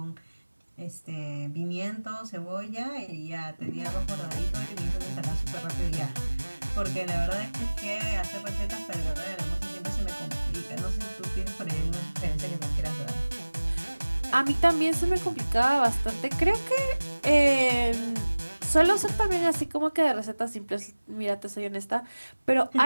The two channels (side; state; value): both; inverted; correlation -1.00